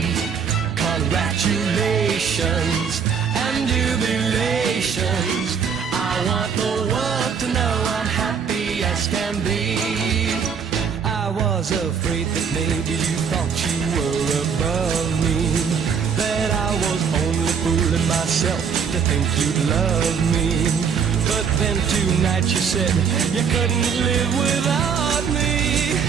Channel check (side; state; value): left; quieter; 6.7 dB